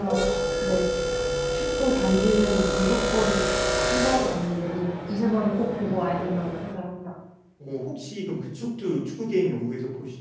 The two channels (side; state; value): both; identical; correlation 1.00